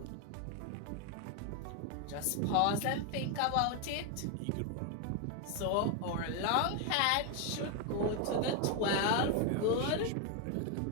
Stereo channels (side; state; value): both; different; correlation 0.01